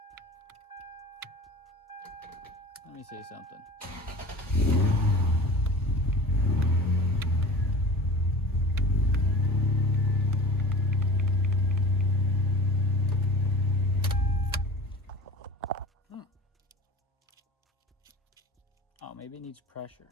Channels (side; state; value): both; normal; correlation 0.38